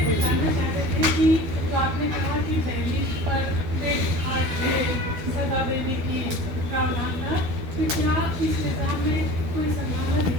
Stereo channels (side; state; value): left; late; 12 ms